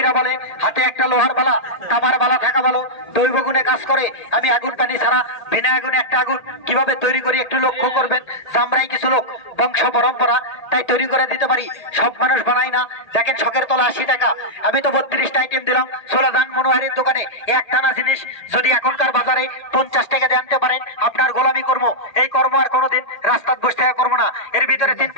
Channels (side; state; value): right; late; 1.8 ms